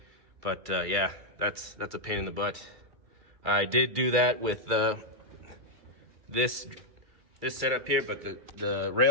But yeah, that's a pain in the butt. I did do that with this setup here, but the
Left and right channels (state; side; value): late; left; 2.3 ms